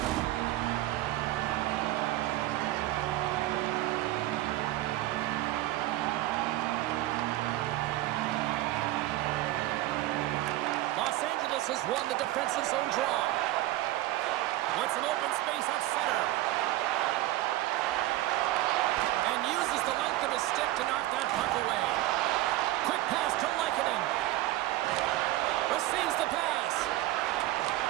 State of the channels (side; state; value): left; quieter; 16.1 dB